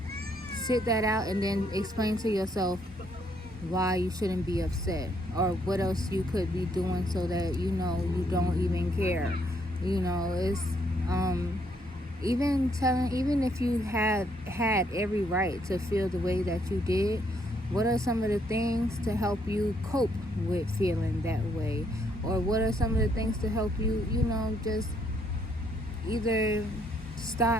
sit that out and then explain to yourself why you shouldn't be upset or what else you could be doing so that you don't even care. It's even if you had every right to feel the way that you did, what are some of the things to help you cope with feeling that way? Or what are some of the things to help you, just either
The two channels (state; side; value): normal; both; correlation 0.71